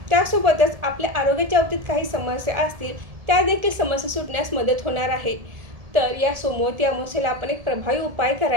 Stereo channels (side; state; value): left; late; 1.7 ms